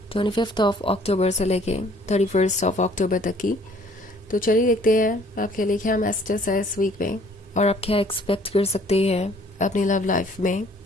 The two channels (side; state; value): both; normal; correlation 0.58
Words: 25 ऑफ अक्टूबर से लेके 31 ऑफ अक्टूबर तक की। तो चलिए देखते हैं आपके लिए क्या मैसेजेस है इस वीक में और आप क्या एक्सपेक्ट कर सकते हैं अपनी लव लाइफ में।